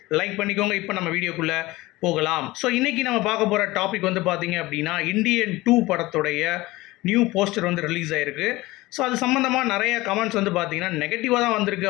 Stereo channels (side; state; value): right; quieter; 19.7 dB